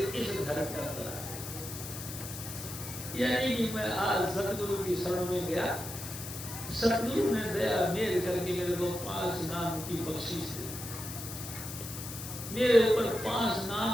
घर के अंदर आ गए। यानी कि मैं आज सतगुरु की शरण में गया, सतगुरु ने दया मेल करके मेरे को 5 नाम की बख्शीश दी, मेरे ऊपर 5 नाम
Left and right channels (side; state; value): left; noise; hiss, 9 dB below the sound